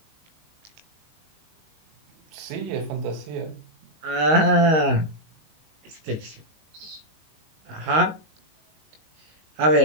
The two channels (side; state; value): left; late; 19 ms